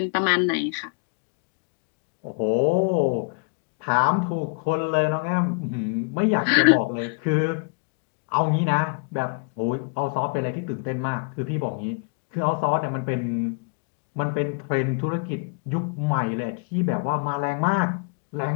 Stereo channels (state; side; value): quieter; right; 37.1 dB